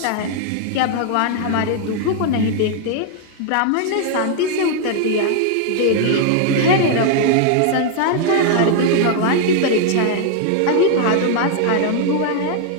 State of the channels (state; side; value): different; both; correlation 0.00